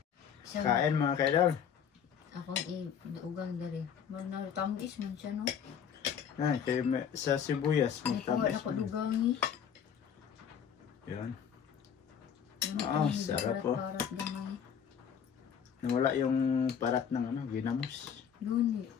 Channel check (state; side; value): quieter; right; 7.9 dB